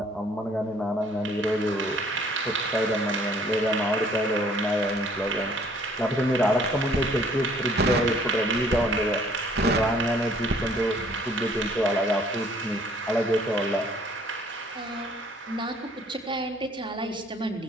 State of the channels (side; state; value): both; normal; correlation 0.59